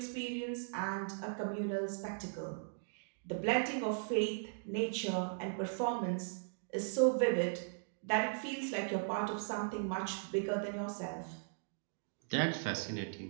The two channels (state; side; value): silent; left; digital silence